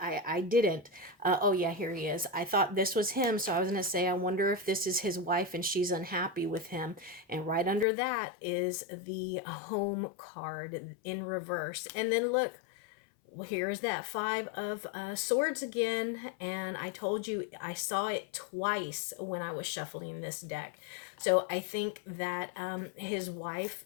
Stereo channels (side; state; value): right; drops out; at 7.9 s